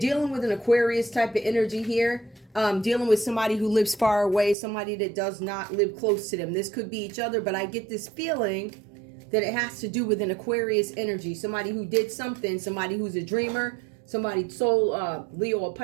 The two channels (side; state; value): left; drops out; at 4.5 s